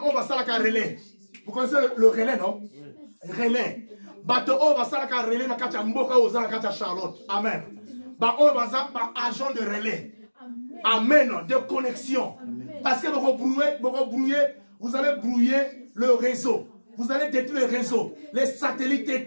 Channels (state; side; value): inverted; both; correlation -1.00